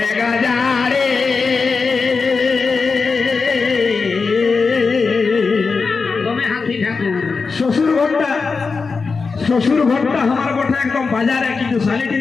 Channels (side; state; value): right; quieter; 4.7 dB